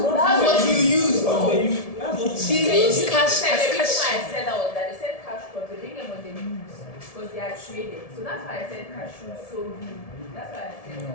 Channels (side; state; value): right; late; 1.7 ms